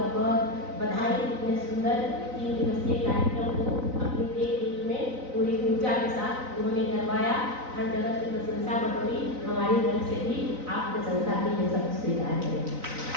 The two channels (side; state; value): left; late; 3.9 ms